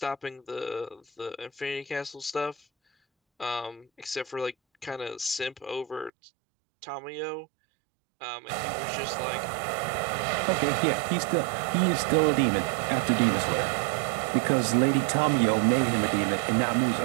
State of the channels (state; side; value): drops out; left; at 6.1 s